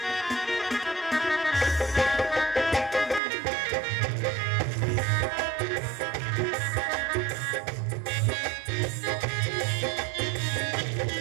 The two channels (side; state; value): left; drops out; at 3.2 s